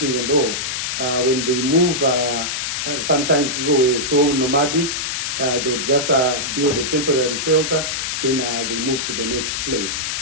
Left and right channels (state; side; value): noise; left; hiss, 2 dB below the sound